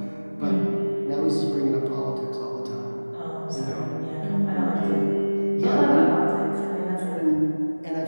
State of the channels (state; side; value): inverted; both; correlation -1.00